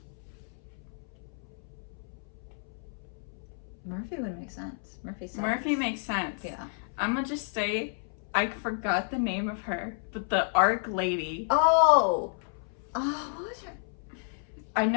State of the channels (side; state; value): right; silent; 57 dB below the other